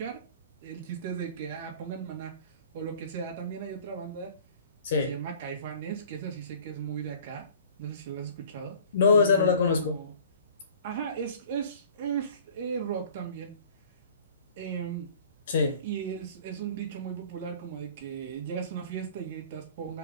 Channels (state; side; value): inverted; both; correlation -0.49